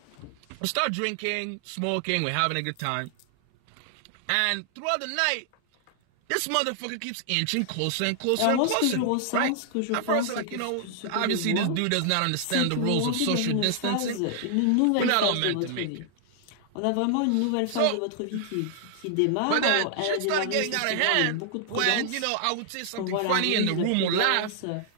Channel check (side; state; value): both; different; correlation 0.00